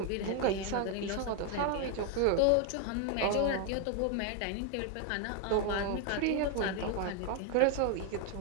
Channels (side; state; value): both; different; correlation 0.01